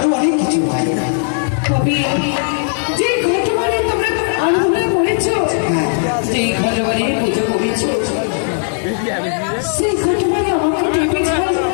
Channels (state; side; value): silent; right; 59 dB below the other